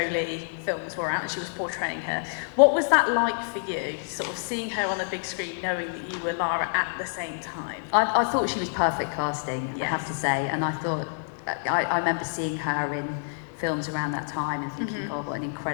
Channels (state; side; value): silent; right; digital silence